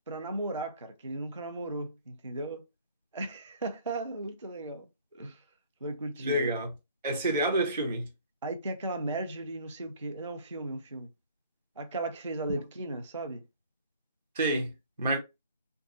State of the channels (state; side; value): inverted; both; correlation -0.52